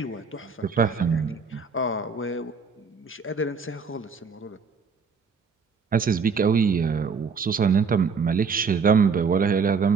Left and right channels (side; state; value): left; quieter; 5.3 dB